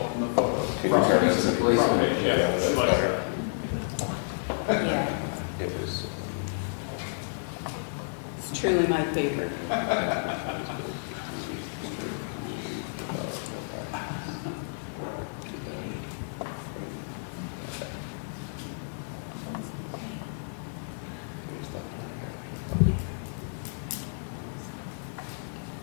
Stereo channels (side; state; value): right; silent; digital silence